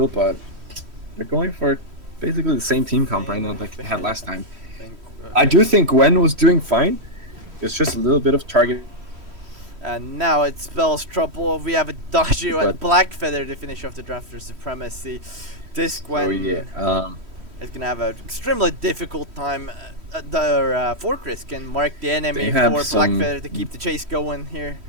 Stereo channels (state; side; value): late; left; 3.1 ms